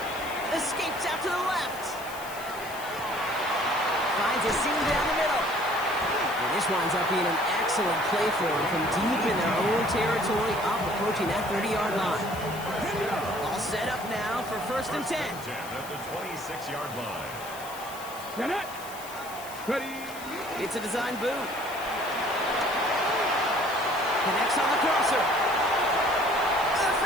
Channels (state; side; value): noise; left; hiss, 15 dB below the sound